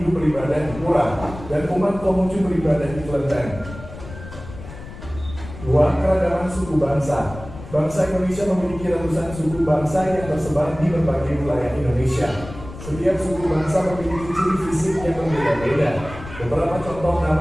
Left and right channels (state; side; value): noise; left; rumble, 14 dB below the sound